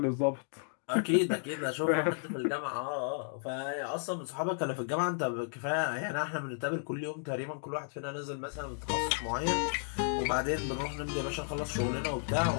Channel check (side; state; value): right; silent; digital silence